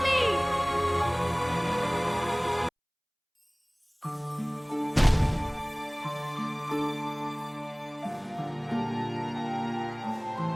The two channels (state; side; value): identical; both; correlation 1.00